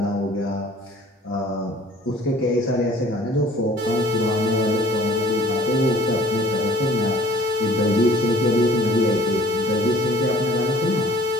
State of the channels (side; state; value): both; normal; correlation 0.52